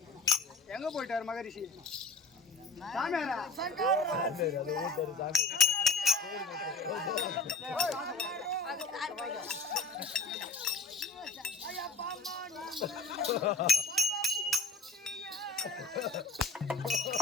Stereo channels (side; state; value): right; quieter; 3.3 dB